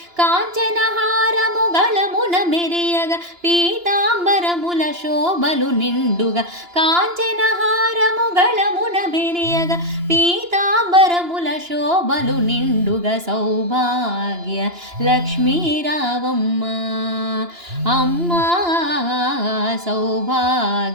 కాంచనహారము గళమున మెరియగా పీతాంబరముల శోభలు నిండుగా కాంచనహారము గళమున మెరియగా పీతాంబరముల శోభలు నిండుగా సౌభాగ్య లక్ష్మీ రావమ్మ అమ్మా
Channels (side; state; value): left; late; 2.9 ms